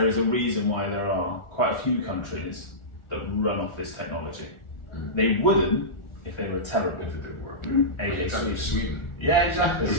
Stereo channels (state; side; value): late; right; 1.4 ms